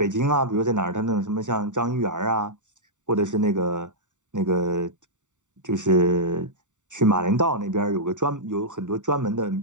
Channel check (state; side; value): late; left; 0.86 ms